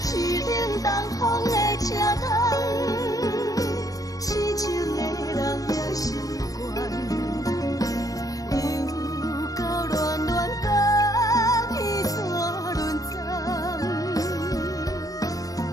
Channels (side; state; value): right; late; 0.17 ms